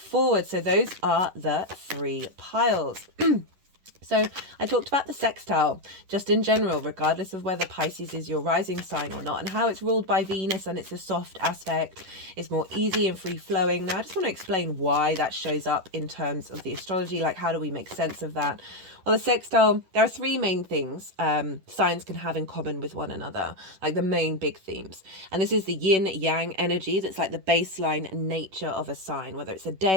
So those are the 3 piles. So I talked about the sextile just in general, regardless of whether Pisces is your rising sign or not, and how it's ruled by Venus and it's a soft aspect. It's more easy and free flowing. Now I just want to explain why that shows up in terms of the astrology, like how do we make sense of that? Well, the sextile, there are 3 main things signs can have in common with one another, like the main big themes. And this is the yin yang energy that's like the baseline nature of a sign, whether it's a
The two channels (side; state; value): left; late; 11 ms